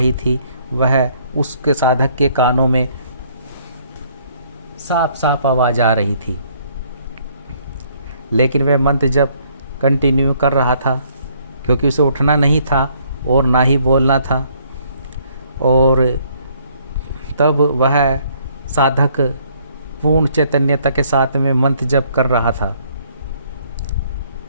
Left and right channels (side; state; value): both; inverted; correlation -0.65